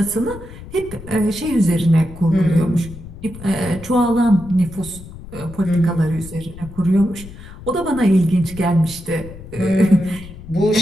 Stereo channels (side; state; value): left; noise; rumble, 15 dB below the sound